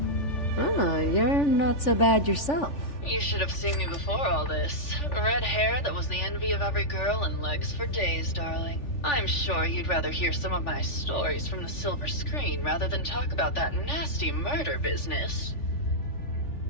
Oh, you're not so bad yourself. You should have seen me before all this. Red hair that was the envy of every girl and legs for days, darling. I'm sure you'd rather hear some of my stories from the silver screen rather than talk about that nasty murder business.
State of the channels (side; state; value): right; late; 3.4 ms